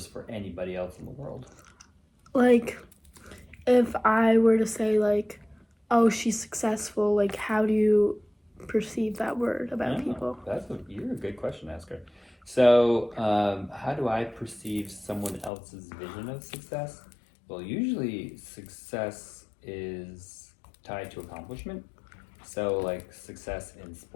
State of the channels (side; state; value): right; drops out; at 15.5 s